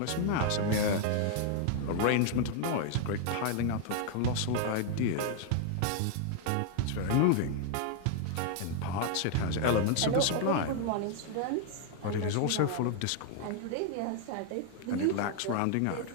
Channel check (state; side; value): different; both; correlation 0.00